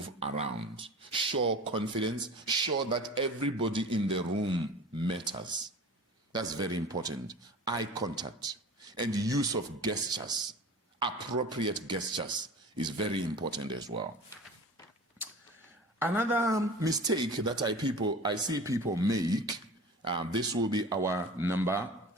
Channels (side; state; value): both; normal; correlation 0.38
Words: around. Show confidence. Show that everybody in the room matters. That's very important. Eye contact and use of gestures, appropriate gestures, is very important as well. Another mistake that I see people make, this will be our number